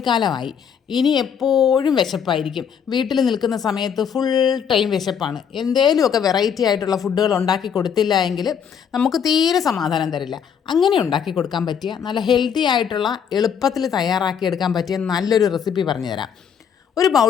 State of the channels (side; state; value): right; quieter; 7.6 dB